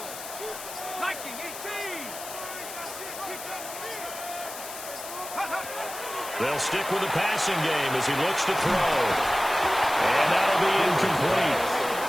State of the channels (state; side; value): noise; left; hiss, 10 dB below the sound